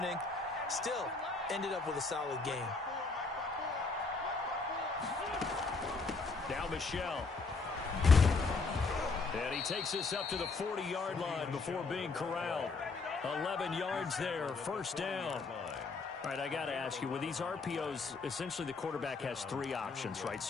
Still, ended up with a solid game. Now Michelle. And he takes this up to the 40-yard line before being corralled. 11 yards there, first down. All right, I got to ask you, with these RPOs, essentially the quarterback has 3 options, right?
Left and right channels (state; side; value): quieter; right; 4.1 dB